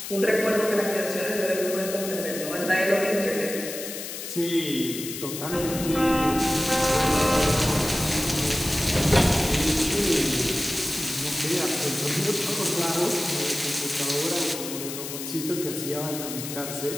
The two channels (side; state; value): left; noise; hiss, 8 dB below the sound